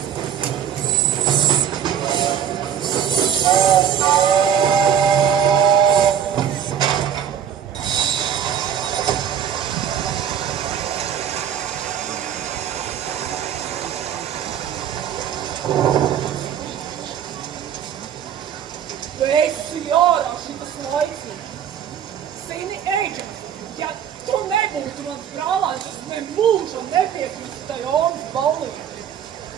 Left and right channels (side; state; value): left; quieter; 8.9 dB